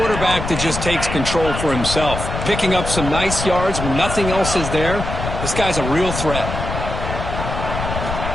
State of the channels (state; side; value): noise; left; rumble, 5 dB below the sound